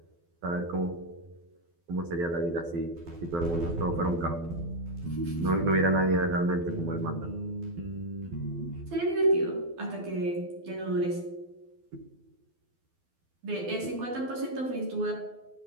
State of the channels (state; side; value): late; left; 12 ms